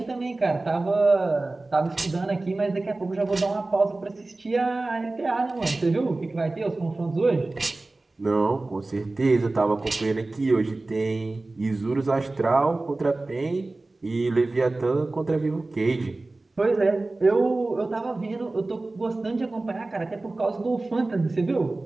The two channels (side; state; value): left; quieter; 3.1 dB